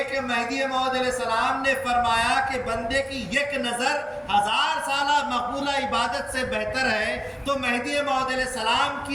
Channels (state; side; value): identical; both; correlation 1.00